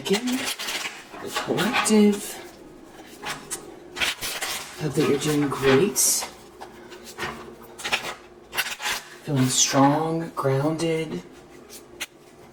The collective. Hope that you're doing great. Feeling strong, grounded,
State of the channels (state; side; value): identical; both; correlation 1.00